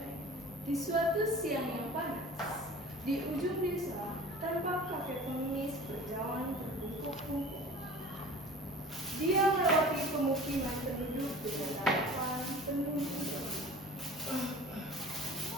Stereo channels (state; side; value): normal; both; correlation 0.41